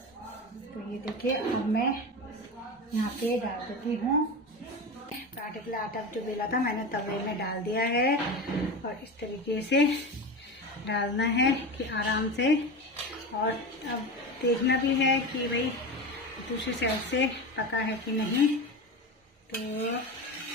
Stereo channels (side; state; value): both; normal; correlation 0.24